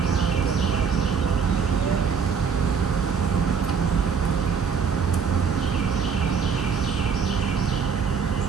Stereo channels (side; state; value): left; quieter; 6.1 dB